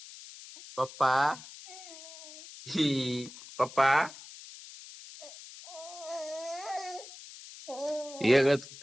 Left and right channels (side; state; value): left; noise; hiss, 16 dB below the sound